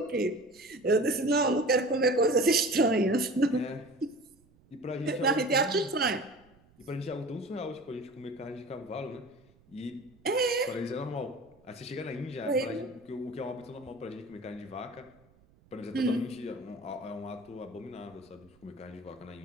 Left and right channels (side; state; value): right; noise; rumble, 30 dB below the sound